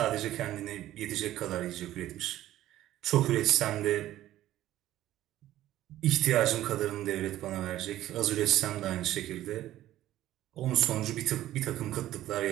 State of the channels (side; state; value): left; quieter; 14.0 dB